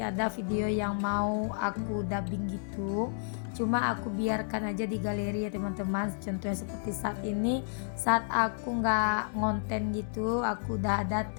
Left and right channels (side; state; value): right; silent; 57 dB below the other